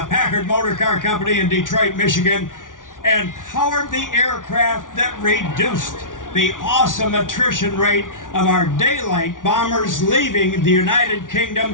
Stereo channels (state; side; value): late; right; 0.88 ms